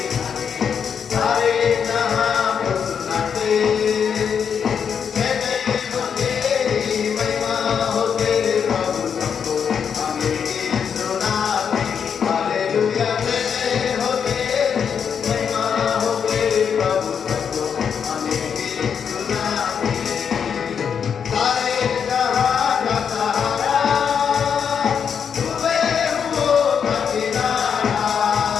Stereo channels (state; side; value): quieter; right; 7.2 dB